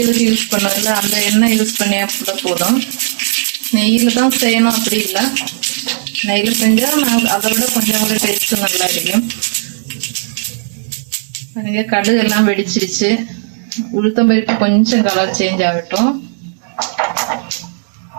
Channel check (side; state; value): left; silent; digital silence